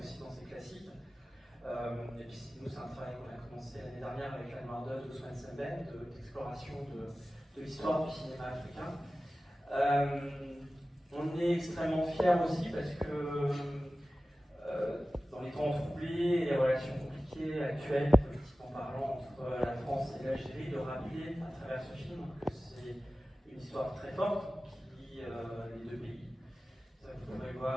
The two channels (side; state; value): both; normal; correlation 0.96